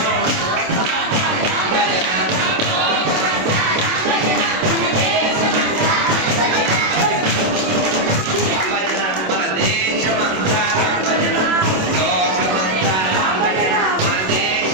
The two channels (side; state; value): left; late; 27 ms